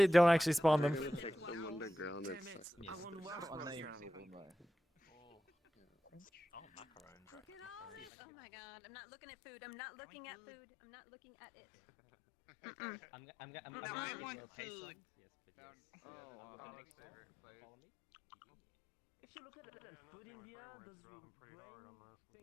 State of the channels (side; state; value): right; drops out; at 8.1 s